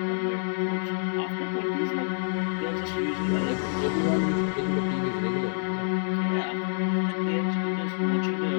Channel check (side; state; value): right; silent; 60 dB below the other